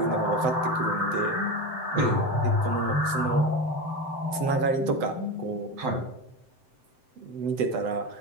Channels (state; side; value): late; left; 7.8 ms